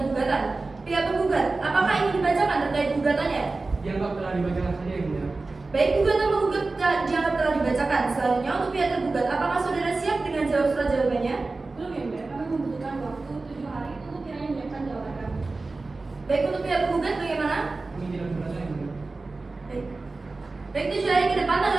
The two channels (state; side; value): quieter; left; 3.5 dB